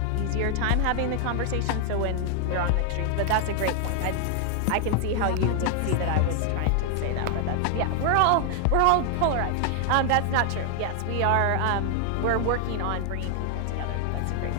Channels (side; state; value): both; different; correlation 0.00